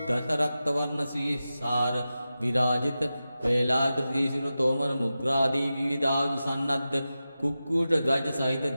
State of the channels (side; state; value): both; inverted; correlation -0.93